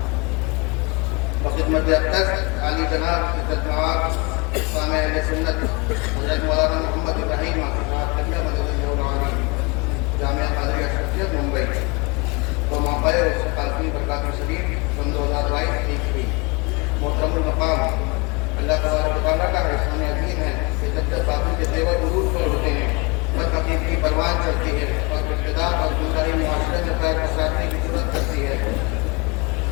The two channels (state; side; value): quieter; right; 28.1 dB